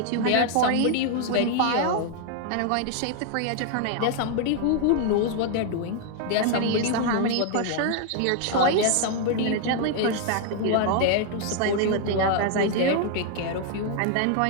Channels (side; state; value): both; different; correlation 0.00